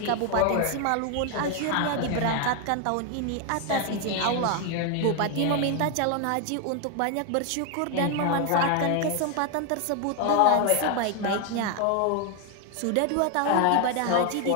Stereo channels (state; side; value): different; both; correlation 0.01